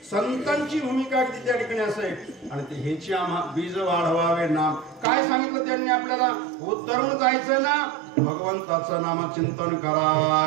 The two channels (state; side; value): drops out; left; at 5.1 s